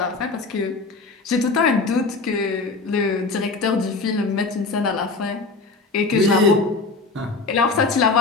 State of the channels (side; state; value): right; quieter; 3.9 dB